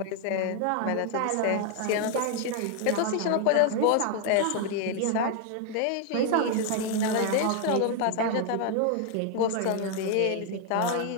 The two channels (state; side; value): different; both; correlation 0.00